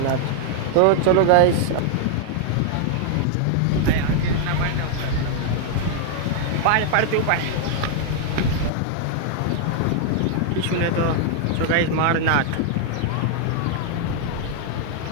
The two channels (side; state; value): both; different; correlation 0.00